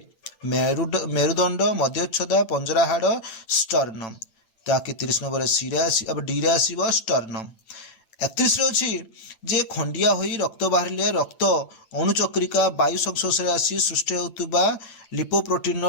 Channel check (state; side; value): late; right; 8.8 ms